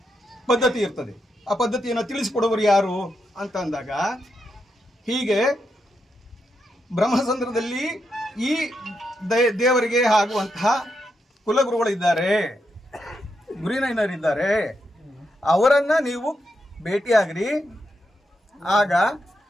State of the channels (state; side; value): normal; both; correlation 0.83